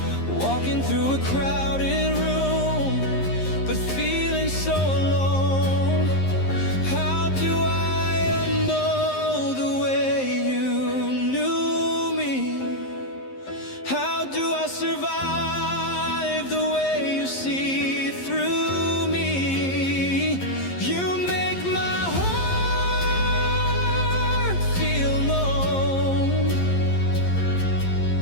walking through a crowded room, but feeling so alone. How do I unknow the way you knew me? How do I survive the way you see through me? You make my heart feel known,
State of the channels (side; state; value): right; late; 11 ms